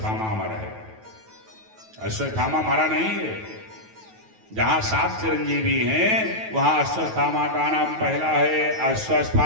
मरा है। अश्वत्थामा मरा नहीं है। जहां 7 चिरंजीवी हैं वहां अश्वत्थामा का नाम पहला है।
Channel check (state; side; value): late; left; 9.2 ms